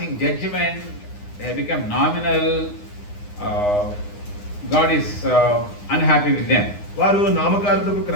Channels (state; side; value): late; right; 9.7 ms